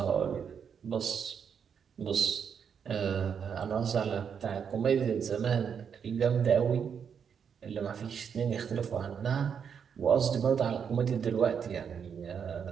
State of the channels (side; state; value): left; quieter; 7.2 dB